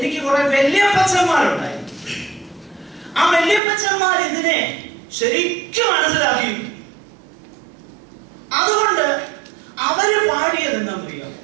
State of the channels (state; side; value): drops out; left; at 3.6 s